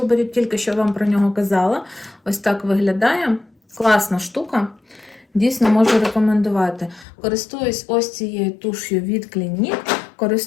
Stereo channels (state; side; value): drops out; right; at 7.1 s